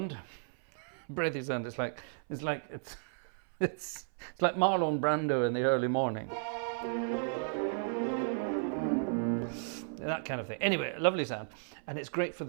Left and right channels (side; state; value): left; silent; 55 dB below the other